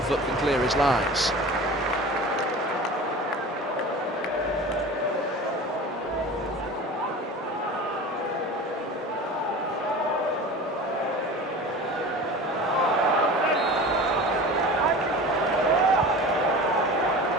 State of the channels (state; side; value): normal; both; correlation 0.36